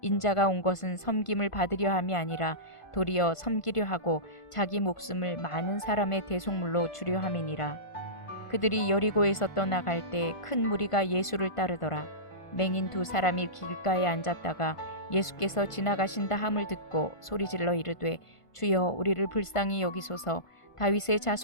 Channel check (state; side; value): late; right; 1.5 ms